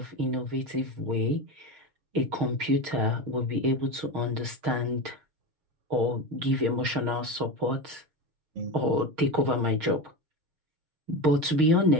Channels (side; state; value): left; late; 6.4 ms